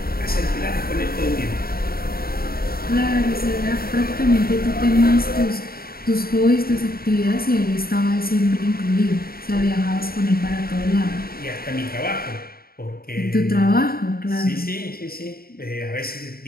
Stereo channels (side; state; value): right; late; 0.43 ms